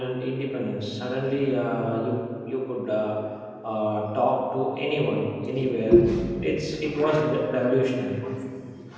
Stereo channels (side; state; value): both; identical; correlation 1.00